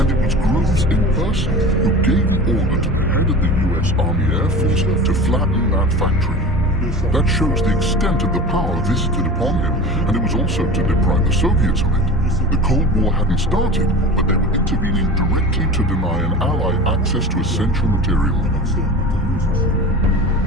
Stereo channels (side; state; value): both; normal; correlation 0.34